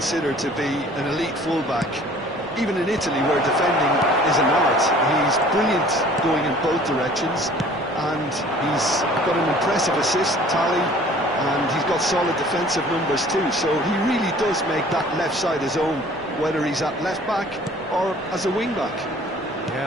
to be an elite fullback. Even in Italy, where defending is an art, he's brilliant going in both directions, and he's got an impressive assist tally, and he's got solid defensive numbers too, so he really does make that left side his own, whether he's at left-back or as a wing-back.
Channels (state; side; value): noise; left; rumble, 26 dB below the sound